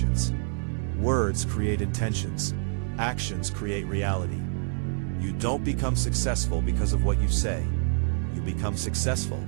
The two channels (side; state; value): left; silent; digital silence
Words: Words create intentions. Actions create reality. You don't become successful because of what you say. You become successful